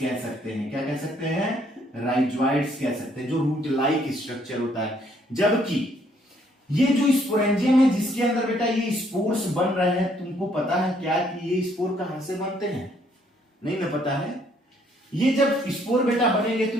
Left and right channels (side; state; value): both; normal; correlation 0.67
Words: सकते हैं। क्या कह सकते हैं, राइजोइड्स कह सकते हैं, जो रूट लाइक स्ट्रक्चर होता है। जबकि ये जो स्पोरेंजियम है जिसके अंदर बेटा ये स्पोर्स बन रहे हैं, तुमको पता है क्या कि ये स्पोर कहां से बनते हैं? नहीं ना पता है। ये जब स्पोर बेटा बनेंगे तो